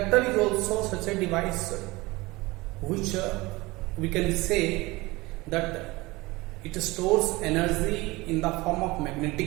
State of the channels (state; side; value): quieter; left; 21.8 dB